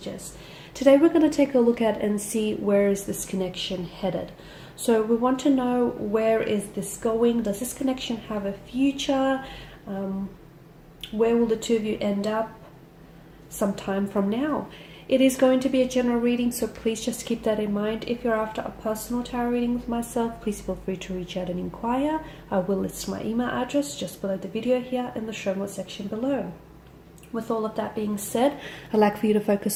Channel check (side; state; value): both; identical; correlation 1.00